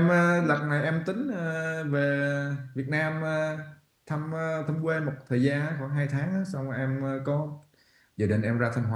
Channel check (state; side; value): identical; both; correlation 1.00